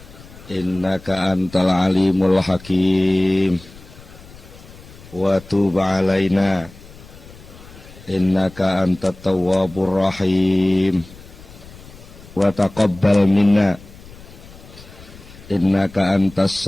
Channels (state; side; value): noise; left; rumble, 20 dB below the sound